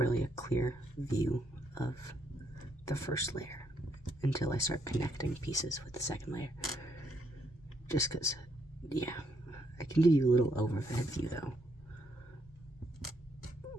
a clear view of the first layer until I start connecting pieces with the second layer. Just because, yeah, I can give you a little overhead view though.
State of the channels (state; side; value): normal; both; correlation 0.74